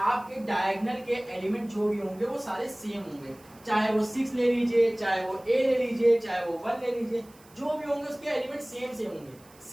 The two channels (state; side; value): noise; right; hiss, 26 dB below the sound